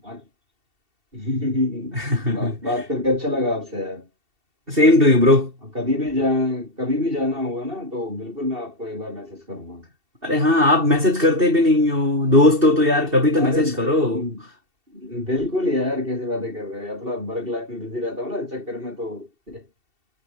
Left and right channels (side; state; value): left; late; 2.7 ms